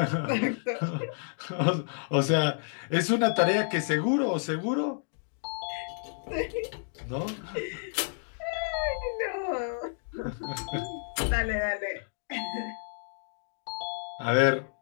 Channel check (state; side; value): silent; right; digital silence